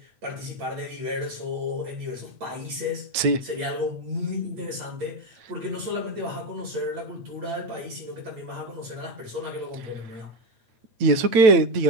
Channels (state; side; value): late; left; 9.0 ms